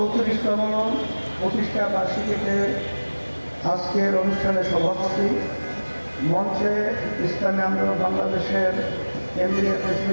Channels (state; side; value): inverted; both; correlation -1.00